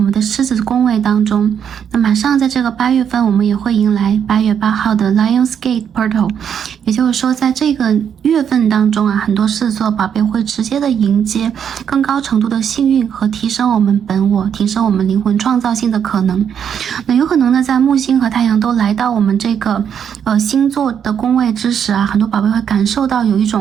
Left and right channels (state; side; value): quieter; left; 8.1 dB